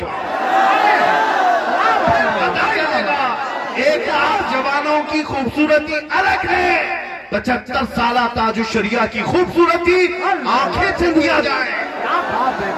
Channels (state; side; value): identical; both; correlation 1.00